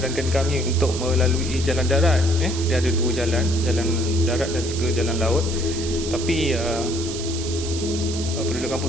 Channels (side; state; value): right; noise; hiss, 8 dB below the sound